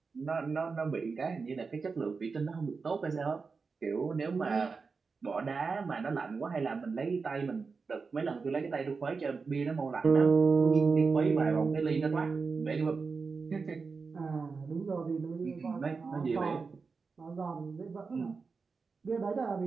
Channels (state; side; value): quieter; left; 4.8 dB